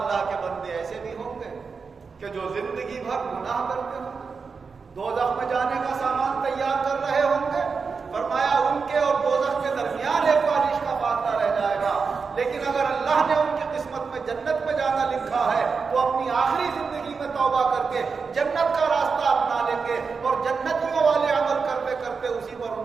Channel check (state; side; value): quieter; left; 5.1 dB